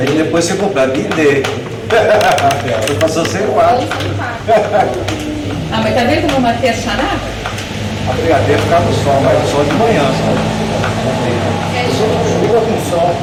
depois você completa e D. Você passou sem quatro. Ah, mas tá vendo como eu matei a charada? A brigadeira ficava no sol, mas no sol de manhã só. Chuva com sol.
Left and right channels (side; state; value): both; identical; correlation 1.00